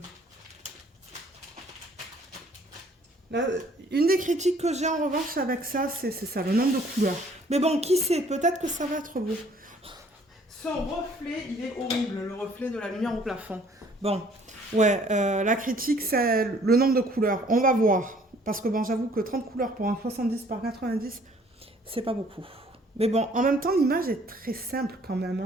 Une des critiques que j'ai en revanche avec ça, c'est ça, le nombre de couleurs. Mais bon, qui sait, peut-être que ça va être beau. Son reflet, il est horrible, le reflet de la lumière au plafond. Bon, ouais, la critique, c'est le nombre de couleurs. On va voir. Parce que bon, j'avoue que 30 couleurs pour un 70 par 90, c'est pas beaucoup. Mais bon, en même temps, l'image est très simple quand même.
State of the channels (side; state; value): both; normal; correlation 0.58